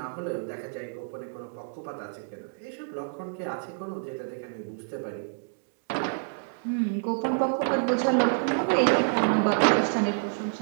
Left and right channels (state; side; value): silent; left; digital silence